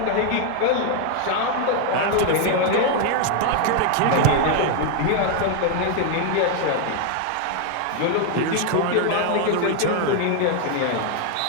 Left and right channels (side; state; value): both; different; correlation 0.00